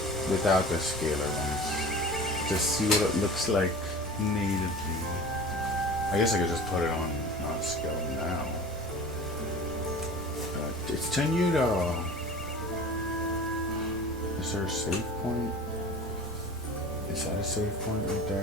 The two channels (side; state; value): both; normal; correlation 0.38